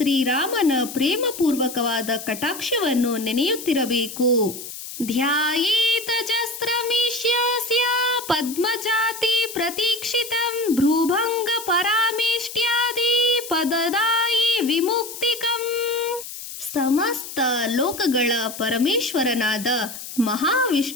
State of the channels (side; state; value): left; noise; hiss, 11 dB below the sound